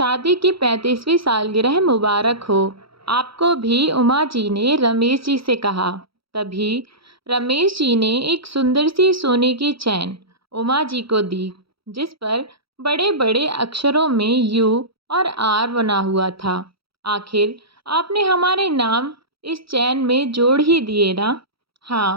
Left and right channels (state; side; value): late; left; 0.75 ms